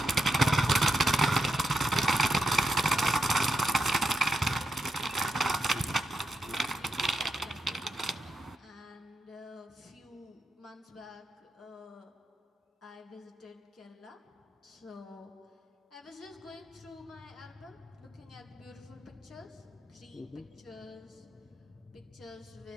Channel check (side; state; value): both; normal; correlation 0.85